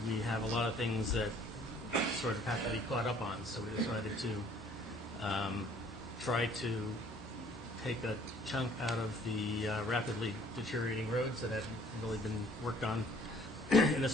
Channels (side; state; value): both; normal; correlation 0.58